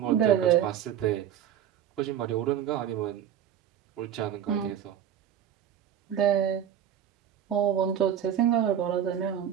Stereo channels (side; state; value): left; quieter; 9.7 dB